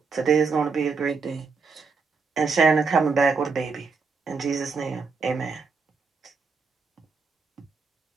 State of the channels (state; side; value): quieter; left; 4.8 dB